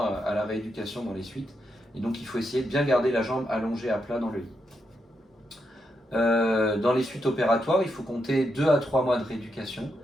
à la rééducation dans les suites. Et donc il faut essayer de bien garder la jambe allongée à plat dans le lit. Dans les suites opératoires, il faut compter 2 à 3 mois de rééducation.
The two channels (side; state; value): both; normal; correlation 0.83